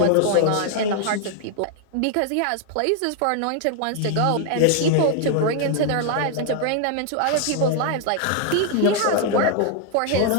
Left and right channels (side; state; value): both; different; correlation 0.00